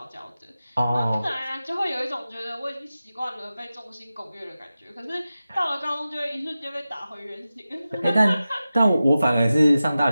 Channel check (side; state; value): both; inverted; correlation -0.94